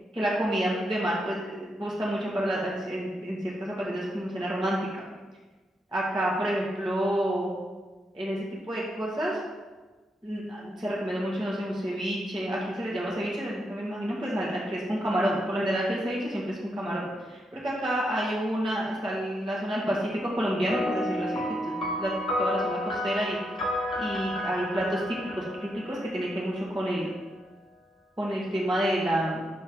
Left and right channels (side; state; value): both; normal; correlation 0.81